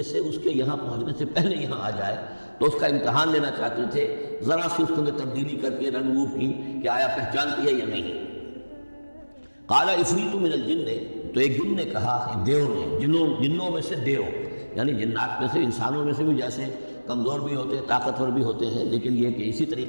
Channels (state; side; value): inverted; both; correlation -1.00